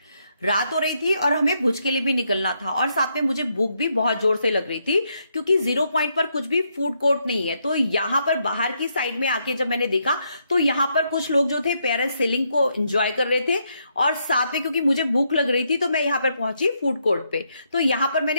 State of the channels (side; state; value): both; inverted; correlation -0.77